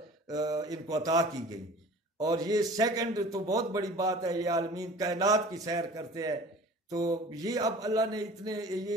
ان کو عطا کی گئی. اور یہ سیکنڈ تو بہت بڑی بات ہے، یہ عالمین کائنات کی سیر کرتے ہیں. تو یہ اب اللہ نے یہ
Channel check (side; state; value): both; normal; correlation 0.44